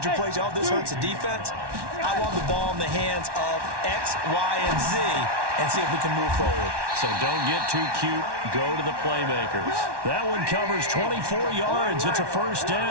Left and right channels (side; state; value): left; late; 1.1 ms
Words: your plays, oh, this hurts the defense. I want the ball in the hands of X, Y, and Z and see if we can move forward. So don't get too cute. Go to the playmakers. That one covers 24 yards. It's a 1st